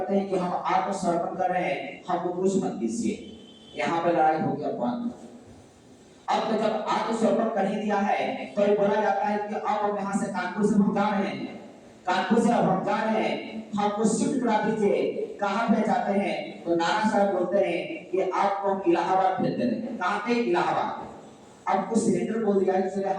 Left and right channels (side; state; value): both; identical; correlation 1.00